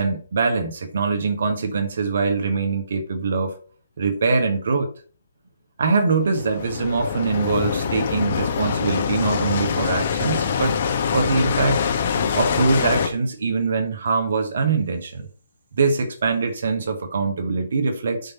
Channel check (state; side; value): inverted; both; correlation -0.70